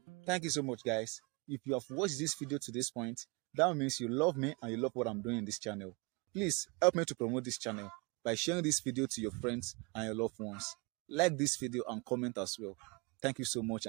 Thank you so much, guys. If you have watched this video to this point, that means you love me and you love what I'm doing in this channel. Please help me to promote this channel by sharing this video to your friends and your loved ones. Like this video and comment as well. Thank you so much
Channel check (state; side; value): quieter; left; 29.7 dB